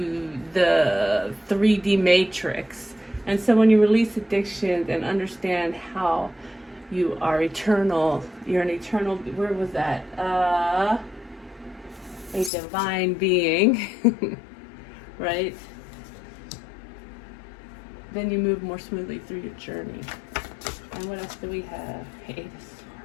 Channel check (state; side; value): drops out; right; at 12.5 s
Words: the 3D matrix. And so when you release addictions and understand how you are eternal, you're an eternal, where was that? A divine being, right? Then you move more smoothly through your journey. And what else do we have? Eight of